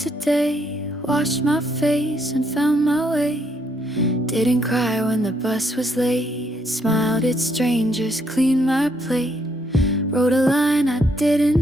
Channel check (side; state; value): both; normal; correlation 0.73